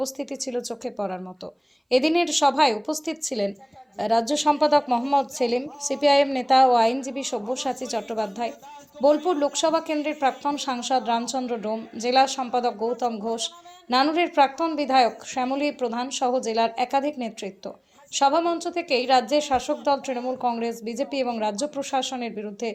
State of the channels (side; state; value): both; identical; correlation 1.00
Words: ছিল চোখে পড়ার মতো। এদিনের সভায় উপস্থিত ছিলেন রাজ্য সম্পাদক মোহাম্মদ সেলিম, সিপিআইএম নেতা ও আইনজীবী সব্যসাচী চট্টোপাধ্যায়, বোলপুর লোকসভা কেন্দ্রের প্রাক্তন সাংসদ রামচন্দ্র ডোম, জেলা সম্পাদক গৌতম ঘোষ, নানুরের প্রাক্তন বিধায়ক শ্যামলী প্রধান সহ জেলার একাধিক নেতৃত্ব। সভামঞ্চ থেকেই রাজ্যের শাসক দল তৃণমূল কংগ্রেস, বিজেপি এবং রাজ্য প্রশাসনের বিরুদ্ধে